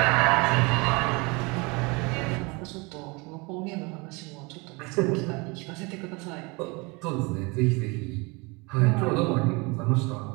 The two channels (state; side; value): quieter; left; 27.4 dB